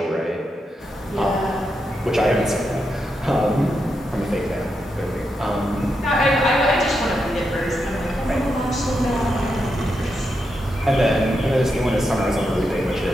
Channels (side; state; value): both; normal; correlation 0.84